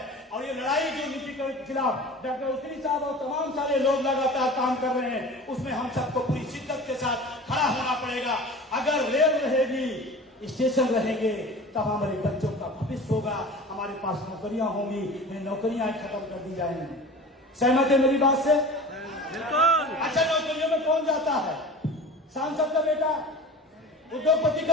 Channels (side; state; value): both; normal; correlation 0.37